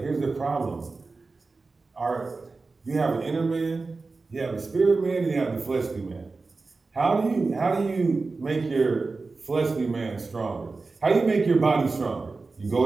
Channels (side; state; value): left; quieter; 3.9 dB